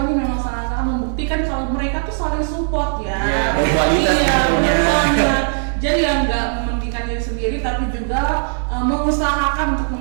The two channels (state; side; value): silent; left; 67 dB below the other